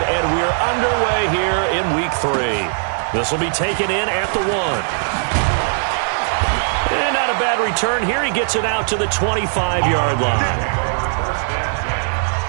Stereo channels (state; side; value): silent; left; 67 dB below the other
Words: and we're underway here in Week 3. This will be taken in at the 1. And not a bad return here. He gets it out to the 25-yard line.